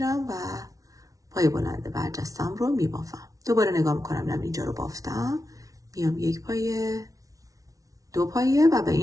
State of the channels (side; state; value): left; late; 0.17 ms